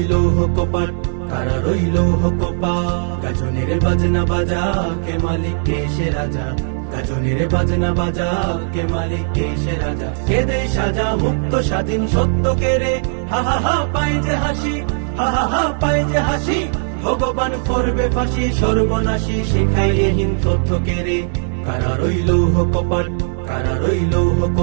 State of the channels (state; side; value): silent; left; digital silence